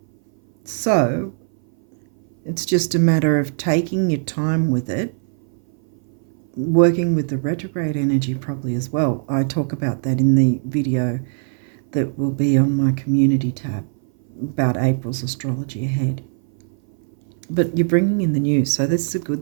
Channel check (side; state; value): left; silent; 60 dB below the other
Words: So it's just a matter of taking your time with it, working with the retrograde energy probably as well. I talk about that in the video that will be on my community tab about April's astrology ahead. But you're bringing in the new, so this is a